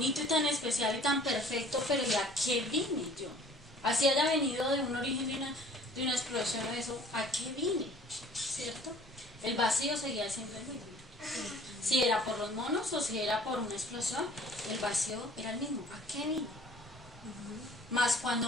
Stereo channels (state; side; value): normal; both; correlation 0.52